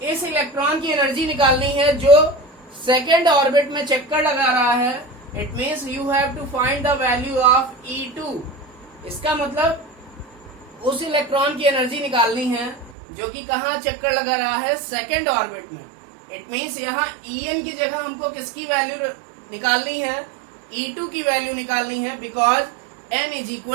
इस इलेक्ट्रॉन की एनर्जी निकालनी है जो सेकेंड ऑर्बिट में चक्कर लगा रहा है. It means you have to find the value of E2. इसका मतलब उस इलेक्ट्रॉन की एनर्जी निकालनी है जो कि कहाँ चक्कर लगा रहा है? सेकेंड ऑर्बिट में. इट मीन्स यहाँ En की जगह हमको किसकी वैल्यू निकालनी है? E2 की वैल्यू निकालनी है, because n is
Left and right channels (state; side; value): drops out; left; at 13.0 s